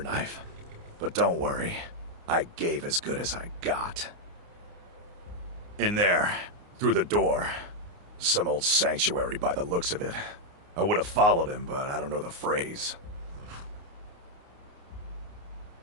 But don't worry, I gave as good as I got. In there, through the door. Some old sanctuary by the looks of it. I would have followed him, but I don't know the phrase.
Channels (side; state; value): left; late; 29 ms